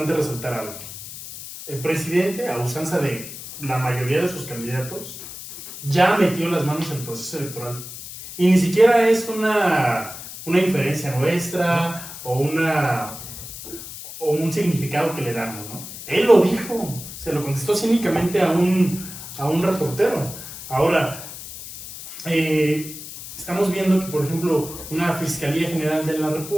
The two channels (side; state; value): left; noise; hiss, 12 dB below the sound